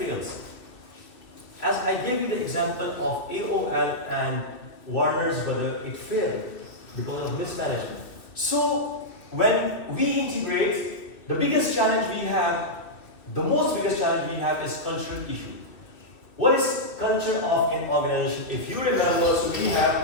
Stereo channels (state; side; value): late; right; 2.6 ms